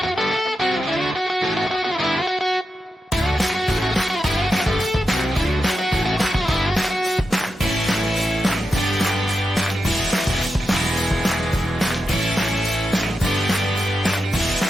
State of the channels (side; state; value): both; normal; correlation 0.88